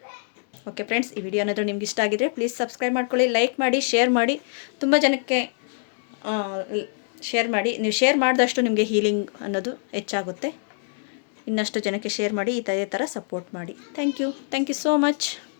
ಓಕೆ ಫ್ರೆಂಡ್ಸ್, ಈ ವಿಡಿಯೋ ಏನಾದರೂ ನಿಮ್ಗೆ ಇಷ್ಟ ಆಗಿದ್ರೆ ಪ್ಲೀಸ್ ಸಬ್ಸ್ಕ್ರೈಬ್ ಮಾಡ್ಕೊಳ್ಳಿ, ಲೈಕ್ ಮಾಡಿ, ಶೇರ್ ಮಾಡಿ. ತುಂಬ ಜನಕ್ಕೆ ಶೇರ್ ಮಾಡಿ. ನೀವು ಶೇರ್ ಮಾಡಿದಷ್ಟು ನಿಮಗೆ ಹೀಲಿಂಗ್ ಅನ್ನೋದು ಹೆಚ್ಚಾಗುತ್ತೆ. ಇನ್ನಷ್ಟು ಜನಕ್ಕೆ ಶೇರ್ ಮಾಡಿ, ಇದೇ ಥರ ಸಪೋರ್ಟ್ ಮಾಡಿ. Thank you so much.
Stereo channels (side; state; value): right; silent; 59 dB below the other